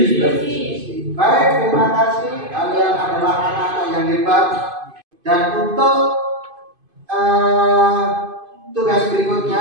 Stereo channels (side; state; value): left; late; 2.5 ms